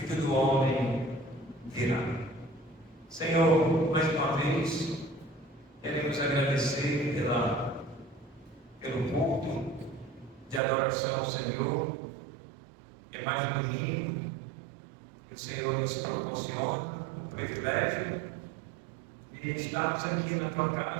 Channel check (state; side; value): drops out; left; at 10.6 s